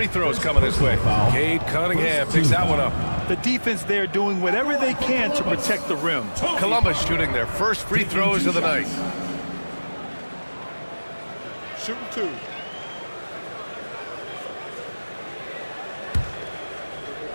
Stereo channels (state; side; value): inverted; both; correlation -1.00